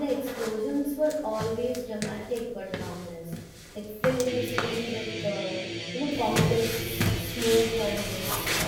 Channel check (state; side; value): identical; both; correlation 1.00